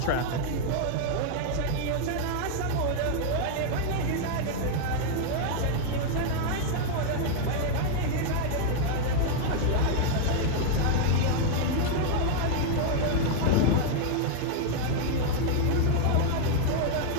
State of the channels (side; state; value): both; different; correlation 0.00